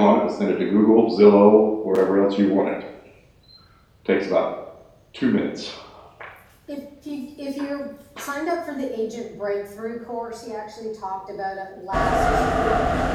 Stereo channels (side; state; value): both; identical; correlation 1.00